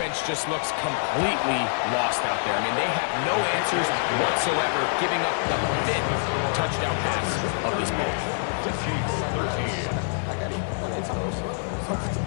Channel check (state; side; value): silent; right; digital silence